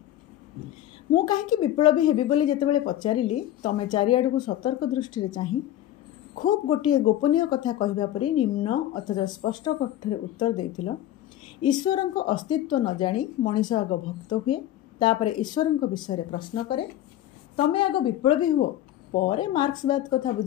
मु कहीं विप्लवी हेबी बोली जेतेबेले पचारिली तमे चारिआड़ को सतर्क दृष्टि चाही खूब गोटे गोपनीय कथा कहवा परी निम्न अथच स्पष्ट कण्ठरे उत्तर देथिल। ईश्वर को अस्तित्व न जानी मनीष आग भक्त हुए तापर ईश्वर विषय प्रश्न करे। तमे आग विप्लवी हुओ परे मार्क्सवाद कथा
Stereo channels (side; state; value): right; quieter; 12.8 dB